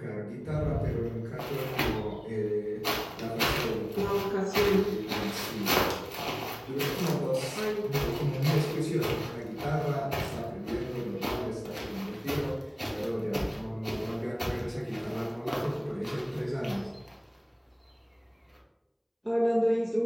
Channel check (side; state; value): both; identical; correlation 1.00